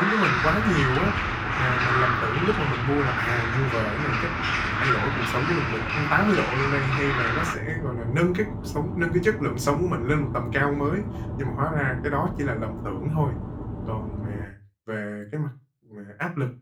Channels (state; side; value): identical; both; correlation 1.00